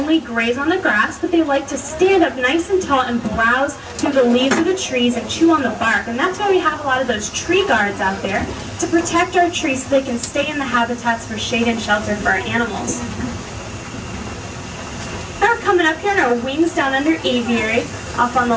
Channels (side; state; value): both; identical; correlation 1.00